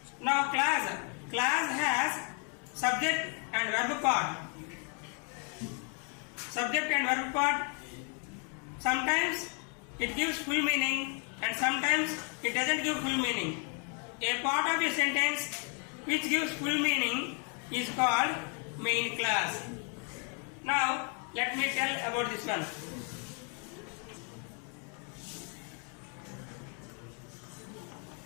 Now clause has subject and verb part. Subject and verb part. Sometimes it gives full meaning and sometimes it doesn't give full meaning. A part of a sentence which gives full meaning is called main clause. Now let me tell about this one.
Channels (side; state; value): right; quieter; 39.3 dB